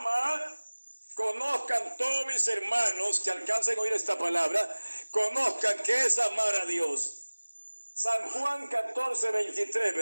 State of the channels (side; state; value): both; inverted; correlation -1.00